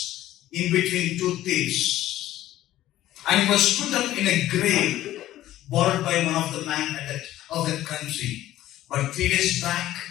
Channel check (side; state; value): right; quieter; 14.1 dB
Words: in between two thieves. And he was put up in a grave borrowed by one of the men of that country. But 3 days back,